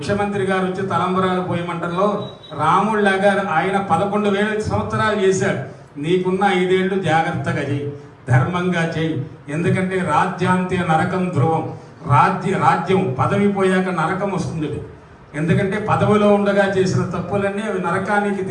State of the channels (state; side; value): identical; both; correlation 1.00